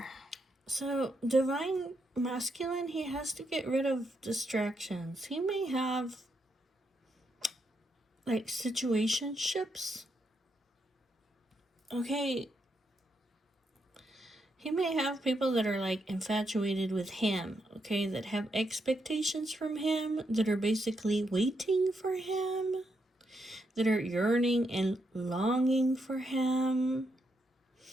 So, Divine Masculine, he has to get rid of distractions. He may have, like, situationships. Okay. He may have people that are, like, infatuated with him, okay, that have expectations from him, that are basically waiting for him, that are yearning and longing for him.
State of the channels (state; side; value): normal; both; correlation 0.80